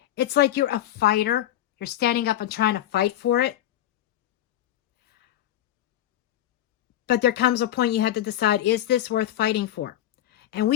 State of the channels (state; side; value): quieter; right; 12.7 dB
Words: like you're a fighter. You're standing up and trying to fight for it. But there comes a point you have to decide, is this worth fighting for? And